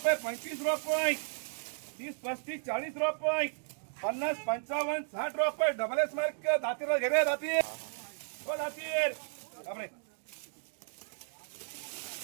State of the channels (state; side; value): silent; left; digital silence